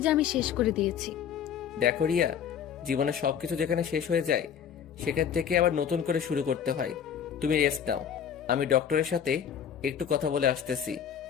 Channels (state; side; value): quieter; right; 8.2 dB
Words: যে আমি শেষ করে দিয়েছি। দেখো রিয়া, জীবনে সবকিছু যেখানে শেষ হয়ে যায় সেখান থেকে আবার নতুন করে শুরু করতে হয়। তুমি রেস্ট নাও, আমি ডক্টরের সাথে একটু কথা বলে আসতেছি।